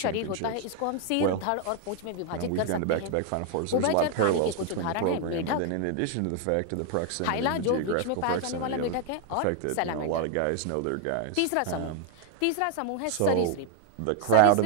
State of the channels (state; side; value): different; both; correlation 0.00